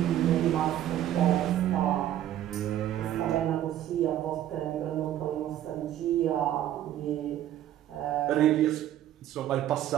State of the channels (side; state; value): left; quieter; 12.0 dB